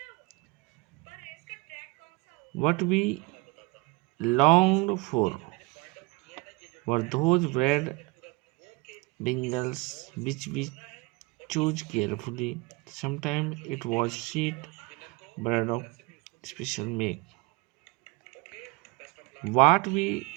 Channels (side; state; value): left; quieter; 23.9 dB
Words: What we longed for were those bread bingles which we choose carefully. Sometimes it was sweet bread of special make. What we